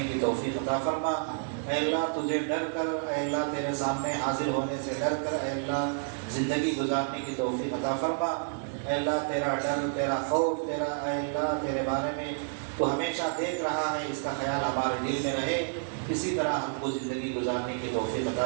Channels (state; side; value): silent; left; digital silence